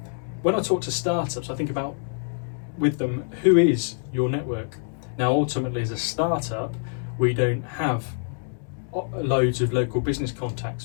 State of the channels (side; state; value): right; silent; digital silence